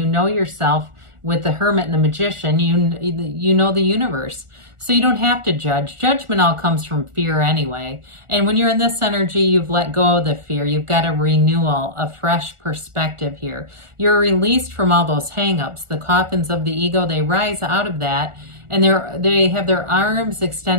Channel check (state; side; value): late; left; 1.4 ms